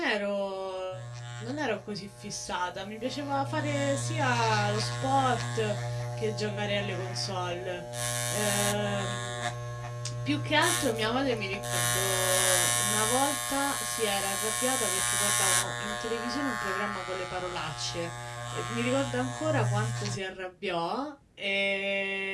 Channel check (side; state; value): both; identical; correlation 1.00